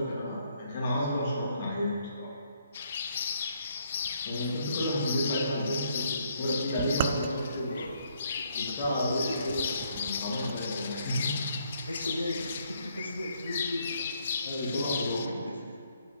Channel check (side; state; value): both; inverted; correlation -0.70